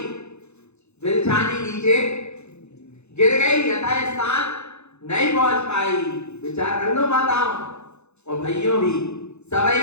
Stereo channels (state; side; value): late; right; 0.81 ms